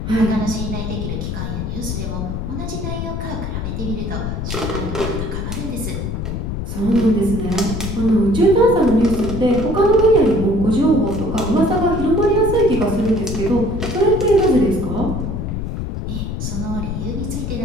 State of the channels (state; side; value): noise; left; rumble, 4 dB below the sound